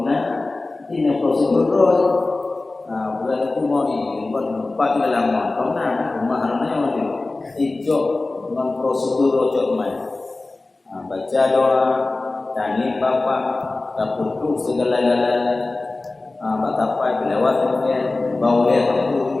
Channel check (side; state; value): right; quieter; 3.2 dB